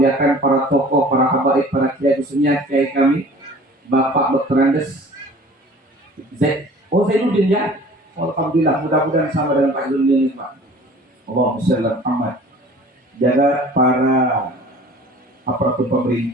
para tokoh, para habaib, para kiai, khususnya kiai kami Bapak Dr. Andes Zainuddin ya. Alhamdulillah, mudah-mudahan sama dengan Pak Zainuddin Pak. Allahumma shalli ala Muhammad. Jaga para aparatur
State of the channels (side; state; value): both; normal; correlation 0.46